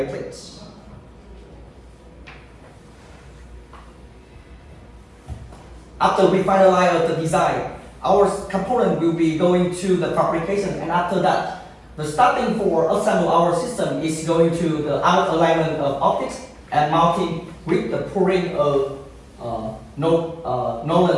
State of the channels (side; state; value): both; identical; correlation 1.00